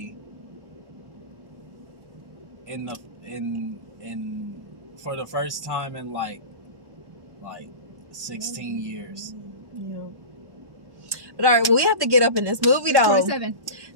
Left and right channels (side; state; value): left; late; 1.1 ms